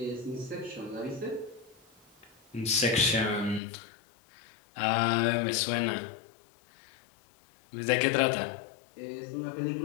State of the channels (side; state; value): right; drops out; at 3.6 s